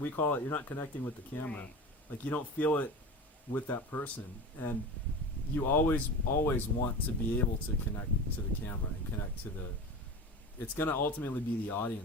call it, you're not connecting with the camera. Right. Like you don't feel it with that person, and you always want to be able to connect to the camera and connect to the. It's going to ultimately be the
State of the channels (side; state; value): both; normal; correlation 0.30